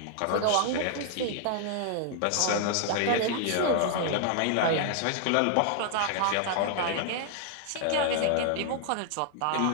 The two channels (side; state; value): both; different; correlation 0.00